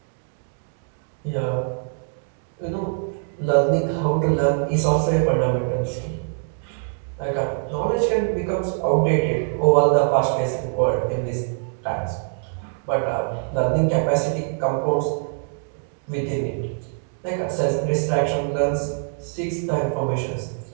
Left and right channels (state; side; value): silent; left; 63 dB below the other